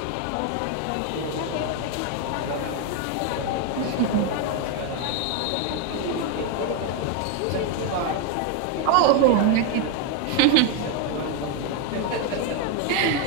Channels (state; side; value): different; both; correlation 0.01